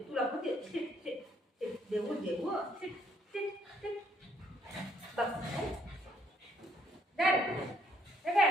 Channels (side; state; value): both; normal; correlation 0.68